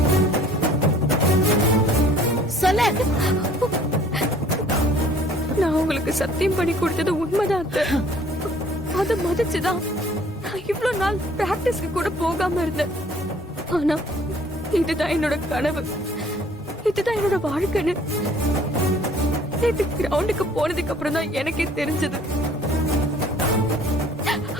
சொல்ல. நான் உங்களுக்கு சத்தியம் பண்ணி கொடுத்தது உண்மைதான். அதை மதிச்சுதான் இவ்வளவு நாள் பிராக்டிஸ்க்கு கூட போகாம இருந்தேன். ஆனா இதுதான் என்னோட கனவு, இதுதான் என்னோட வாழ்க்கைன்னு நேத்து கிரவுண்டுக்கு போனதுக்கு அப்புறம் தான் எனக்கே தெரிஞ்சது.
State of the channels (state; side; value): normal; both; correlation 0.56